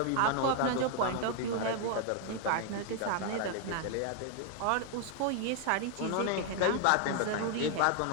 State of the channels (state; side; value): different; both; correlation 0.00